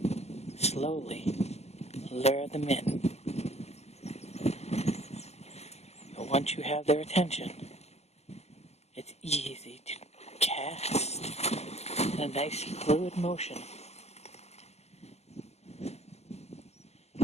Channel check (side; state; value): right; late; 0.31 ms